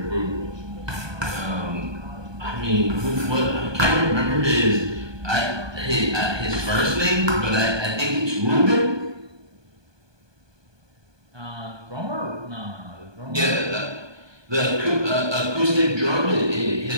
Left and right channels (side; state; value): left; late; 1.2 ms